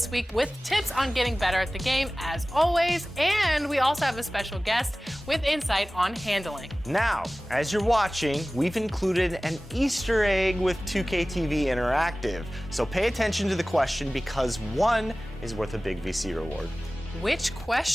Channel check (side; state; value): both; normal; correlation 0.98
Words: week with tips on getting better at the game, as always, and we also have a special guest with insight on handling. Now, as you're watching, we've included an Easter egg with 2K TV Interactive. So pay attention to the question because one is worth a big VC reward. Which